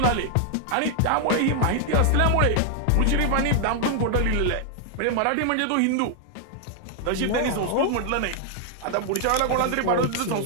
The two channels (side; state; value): both; different; correlation 0.00